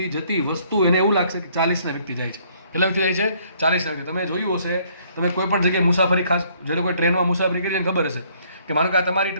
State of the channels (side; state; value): both; inverted; correlation -0.64